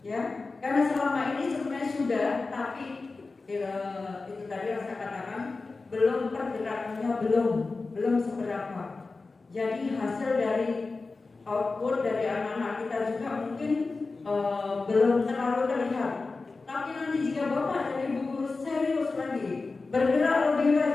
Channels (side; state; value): right; quieter; 3.8 dB